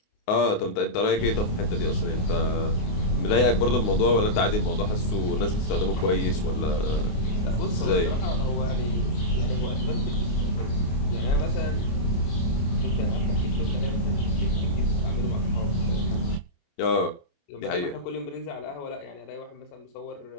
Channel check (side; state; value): right; late; 29 ms